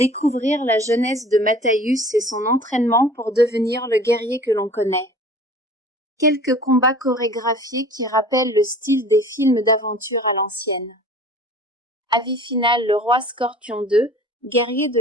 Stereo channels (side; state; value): both; normal; correlation 0.45